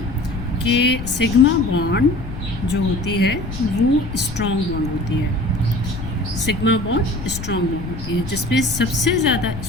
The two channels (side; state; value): left; noise; rumble, 9 dB below the sound